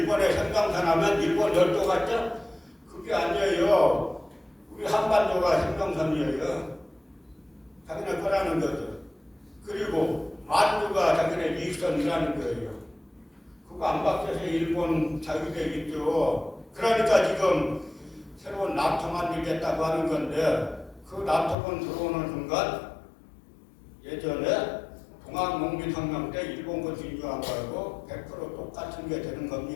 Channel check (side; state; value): right; drops out; at 21.6 s